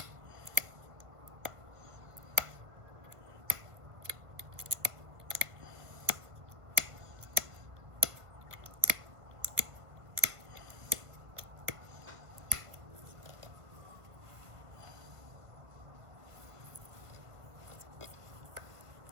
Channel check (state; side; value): late; left; 1.5 ms